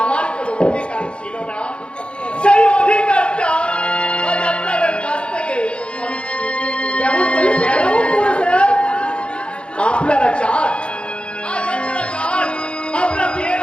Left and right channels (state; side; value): late; right; 0.057 ms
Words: আমার কোনো অধিকার ছিল না। সেই অধিকারটা আজ আপনাদের কাছ থেকে আমি কেমন করে স্যার? আপনারা চান আপনার বিয়ের